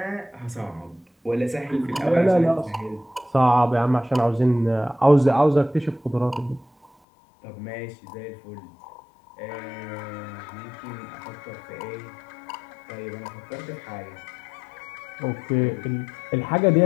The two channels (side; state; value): right; drops out; at 6.9 s